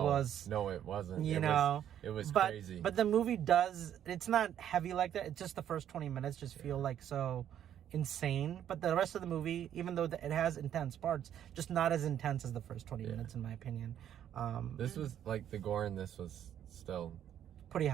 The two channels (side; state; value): left; quieter; 10.3 dB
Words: No, it wasn't. You know. It was crazy. But the movie does... It's not heavy like that. It's just the first 20 minutes just feel like so... insane, but the rest of the movie, even though it has intense parts, just not as intense as the first 20 minutes, in my opinion. This was like the gore in this was still pretty